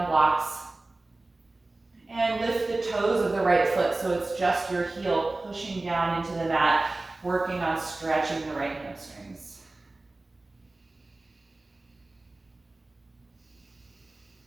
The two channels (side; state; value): left; quieter; 3.0 dB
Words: blocks. And lift the toes of the right foot so it's just your heel pushing down into the mat, working on stretching the right hamstrings.